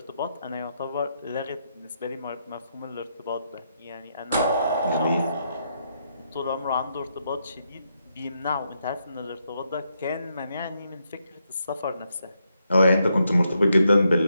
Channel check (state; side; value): inverted; both; correlation -0.80